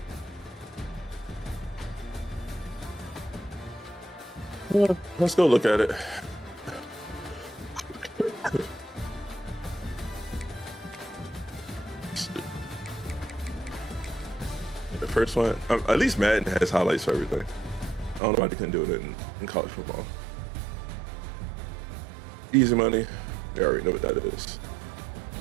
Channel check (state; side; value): drops out; left; at 18.2 s